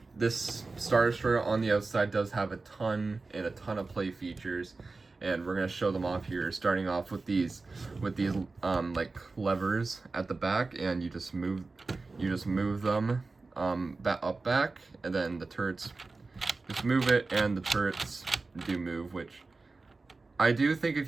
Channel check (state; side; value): quieter; left; 3.7 dB